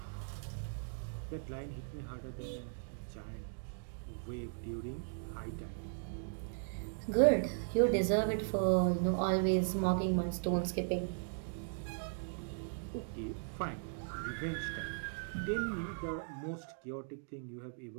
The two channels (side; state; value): left; silent; digital silence